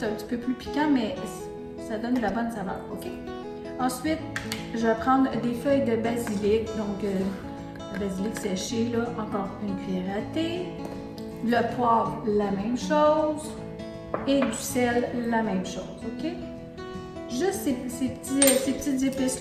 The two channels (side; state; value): both; identical; correlation 1.00